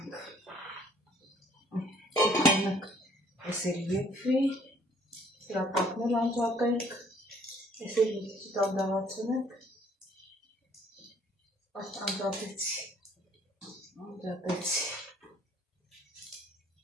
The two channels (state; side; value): normal; both; correlation 0.60